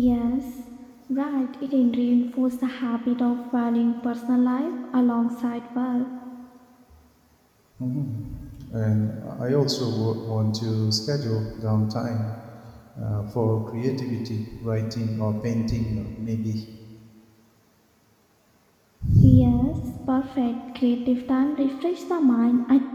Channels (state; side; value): identical; both; correlation 1.00